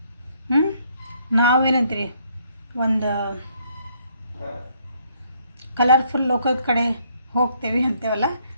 ನಾವೇನಂತೀರಿ, ಒಂದು ಕಲರ್ಫುಲ್ ಲೋಕದ ಕಡೆ ಹೋಗ್ತೇವೆ ಅಂತೇವಲ್ಲ,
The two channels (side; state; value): both; inverted; correlation -0.68